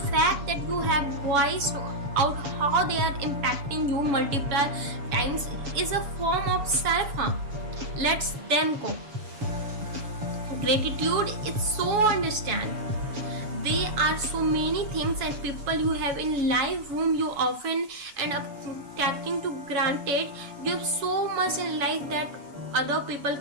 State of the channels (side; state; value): left; late; 7.1 ms